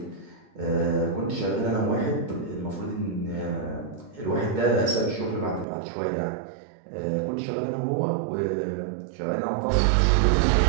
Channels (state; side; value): drops out; left; at 5.7 s